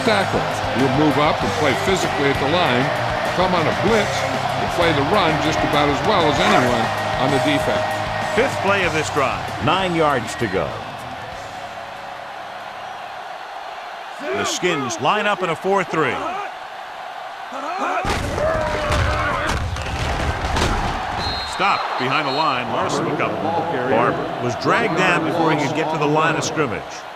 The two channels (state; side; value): identical; both; correlation 1.00